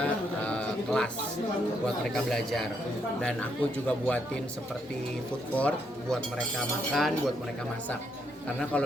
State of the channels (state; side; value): normal; both; correlation 0.76